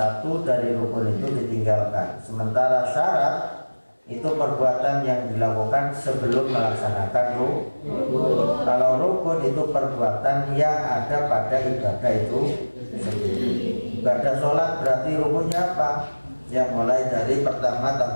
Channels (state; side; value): inverted; both; correlation -1.00